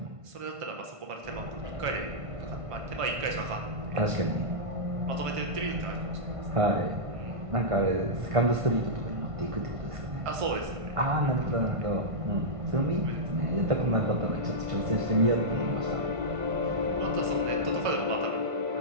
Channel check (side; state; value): left; late; 1.5 ms